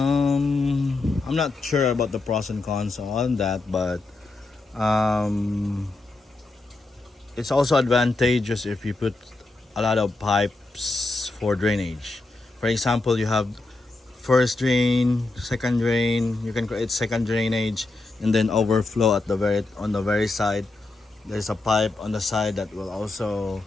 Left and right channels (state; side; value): quieter; right; 3.2 dB